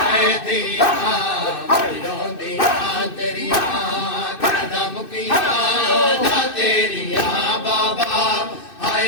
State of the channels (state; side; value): late; right; 2.6 ms